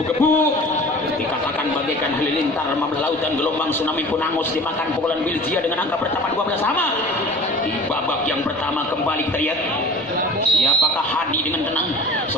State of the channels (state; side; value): normal; both; correlation 0.43